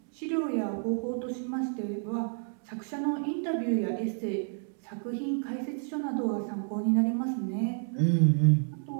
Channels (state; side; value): silent; left; 58 dB below the other